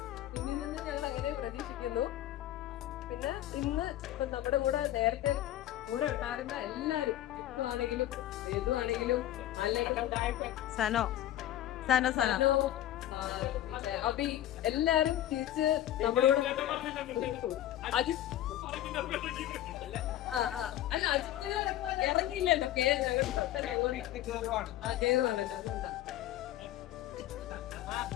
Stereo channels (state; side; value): quieter; right; 13.2 dB